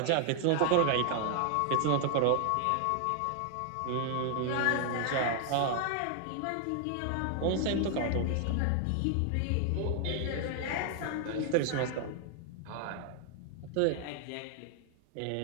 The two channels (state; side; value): different; both; correlation 0.00